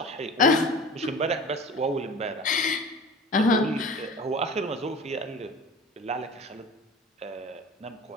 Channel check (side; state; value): both; normal; correlation 0.39